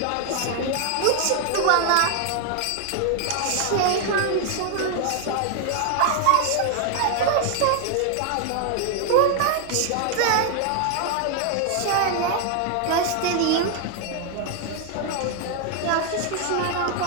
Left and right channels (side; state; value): both; different; correlation 0.00